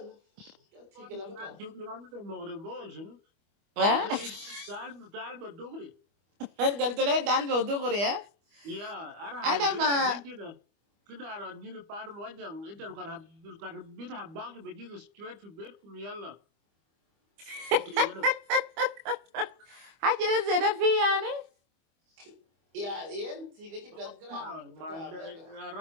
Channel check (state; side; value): late; left; 25 ms